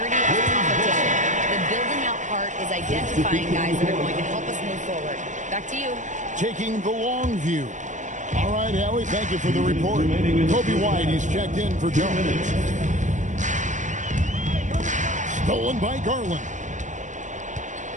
of the competition. The building out part is identifying guys that are going to help us move forward. Back to you. Taking the long view. All right, Allie, thank you for the report. Kobe White, he's checked in for Jones. Stolen by Garland.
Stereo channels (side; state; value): left; late; 0.35 ms